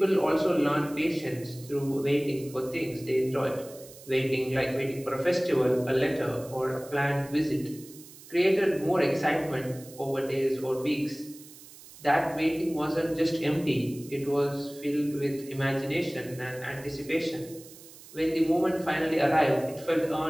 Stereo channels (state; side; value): noise; right; hiss, 19 dB below the sound